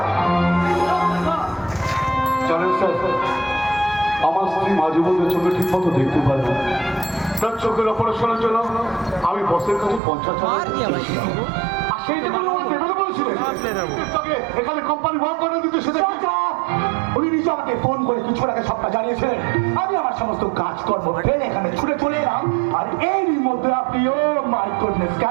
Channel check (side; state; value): left; drops out; at 10.0 s